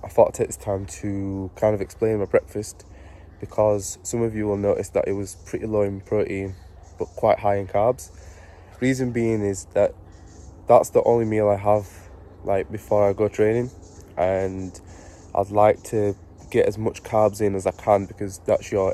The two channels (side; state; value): both; identical; correlation 1.00